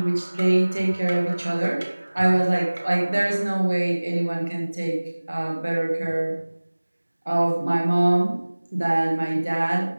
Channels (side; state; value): both; inverted; correlation -1.00